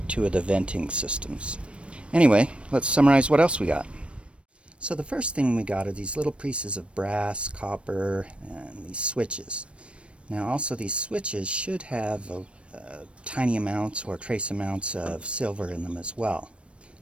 two of the venting systems. Anyway, let's summarize what else we got. So the first thing we got are these little pieces of brass, copper, and these switches. Now also these switches should have tiny amounts or trace amounts of silver in them as well.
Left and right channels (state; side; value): late; left; 0.060 ms